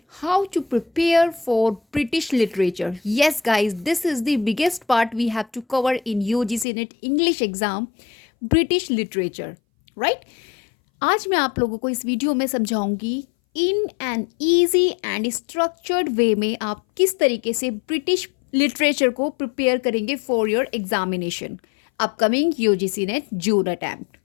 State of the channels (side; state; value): right; drops out; at 6.7 s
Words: how to prepare for British literature. Yes, guys, this is the biggest part we have to cover in UGC NET English exam, British literature, right? आज मैं आप लोगों को इस video में समझाऊंगी in an easy and structured way में आप किस तरीके से ब्रिटिश लिटरेचर को प्रिपेयर करेंगे for your examination upcoming UGC NET June attempt